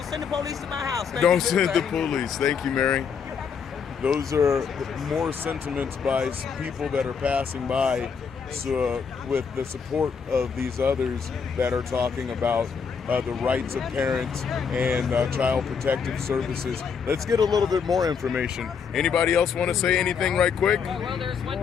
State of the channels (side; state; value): right; quieter; 6.3 dB